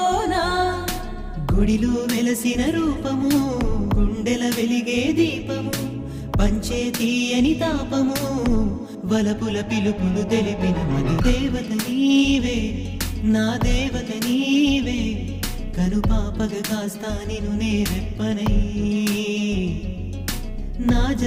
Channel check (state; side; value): identical; both; correlation 1.00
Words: గుడిలో వెలసిన రూపము, గుండెల వెలిగే దీపము, పంచే తీయని తాపము, వలపుల పిలుపులు తెలిపిన మధు దేవత నీవే, నా దేవత నీవే, కనుపాపగా కాస్తా నిన్ను నేరెప్పనై, నా